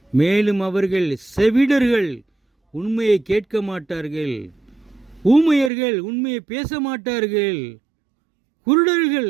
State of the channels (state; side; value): drops out; left; at 5.7 s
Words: மேலும் அவர்கள் செவிடர்கள், உண்மையை கேட்க மாட்டார்கள். ஊமையர்கள், உண்மையை பேச மாட்டார்கள். குருடர்கள்,